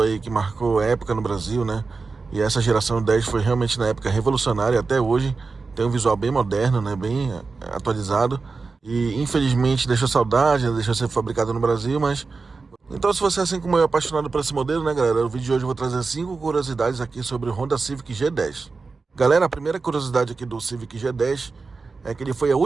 aí que marcou época no Brasil, né? E essa geração 10 foi realmente na época revolucionária, até hoje tem um visual bem moderno, né? Bem atualizado. E infelizmente deixou saudade, né? Deixou de ser fabricado no Brasil, mas... Então, se você, assim como eu, é apaixonado por esse modelo, né, galera? No vídeo de hoje eu vou trazer 5 curiosidades aqui sobre o Honda Civic G10. Galera, a primeira curiosidade aqui do Civic G10 é que ele foi a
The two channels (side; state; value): left; quieter; 4.3 dB